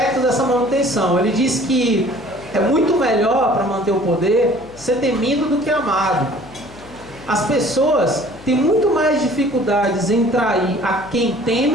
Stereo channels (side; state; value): left; noise; hum, 21 dB below the sound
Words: dessa manutenção. Ele diz que é muito melhor, para manter o poder, ser temido do que amado. As pessoas têm muito mais dificuldades em trair a quem